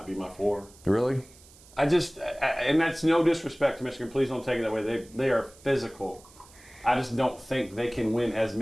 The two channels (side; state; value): right; noise; hiss, 24 dB below the sound